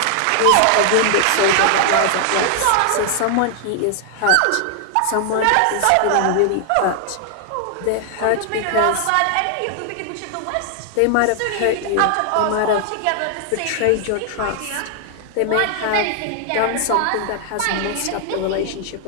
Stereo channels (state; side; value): different; both; correlation 0.00